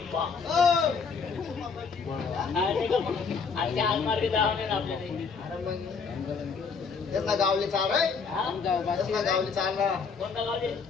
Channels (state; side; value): quieter; right; 5.4 dB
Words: आणि आलमार्गे जावं ना आपल्याला. त्याचा गावले चाल रे त्याचा गावले चाल ना कोणता गावले